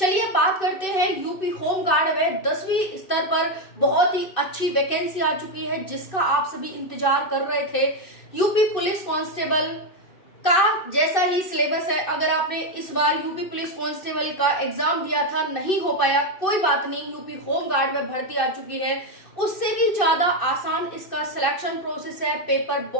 बात करते हैं यूपी होमगार्ड में 10वीं स्तर पर बहुत ही अच्छी वैकेंसी आ चुकी है, जिसका आप सभी इंतजार कर रहे थे। यूपी पुलिस कांस्टेबल का जैसा ही सिलेबस है। अगर आपने इस बार यूपी पुलिस कांस्टेबल का एग्जाम दिया था, नहीं हो पाया, कोई बात नहीं, यूपी होमगार्ड में भर्ती आ चुकी है। उससे भी ज्यादा आसान इसका सिलेक्शन प्रोसेस है। पेपर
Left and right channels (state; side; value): late; right; 2.6 ms